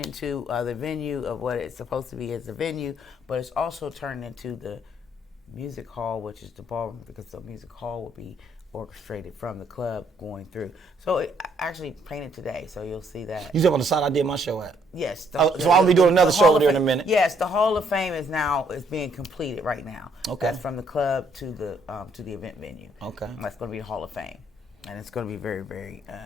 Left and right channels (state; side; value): normal; both; correlation 0.68